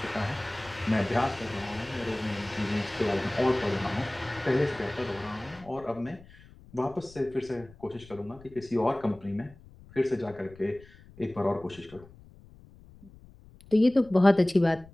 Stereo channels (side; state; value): left; noise; rumble, 22 dB below the sound